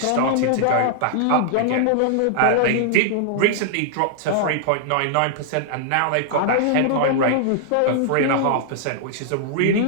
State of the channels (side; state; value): both; different; correlation -0.01